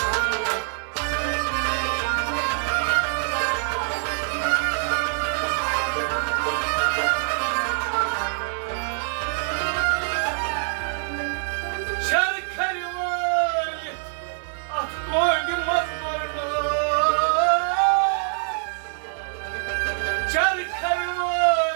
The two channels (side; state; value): left; silent; digital silence